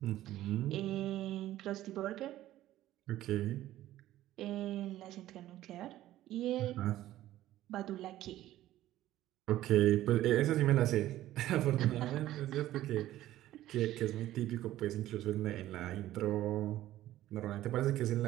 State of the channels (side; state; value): left; quieter; 14.2 dB